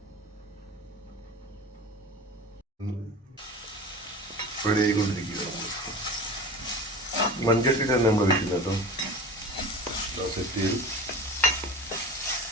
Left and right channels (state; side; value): normal; both; correlation 0.34